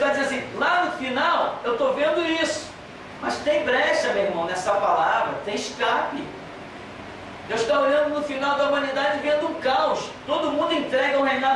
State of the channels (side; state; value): both; identical; correlation 1.00